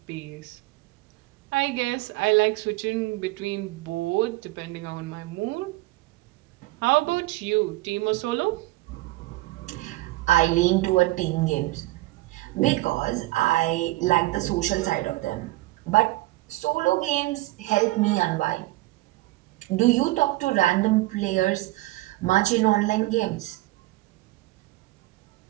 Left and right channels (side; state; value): left; quieter; 19.6 dB